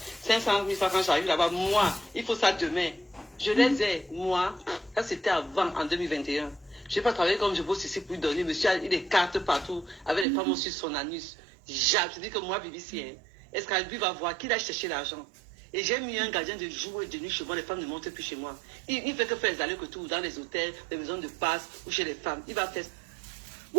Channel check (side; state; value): left; drops out; at 10.2 s